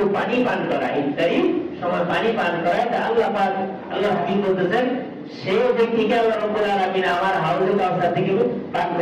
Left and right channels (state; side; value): identical; both; correlation 1.00